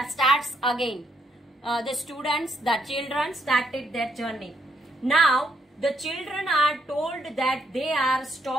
again. The students, the children started their journey. Now the children are told that they are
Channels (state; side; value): normal; both; correlation 0.75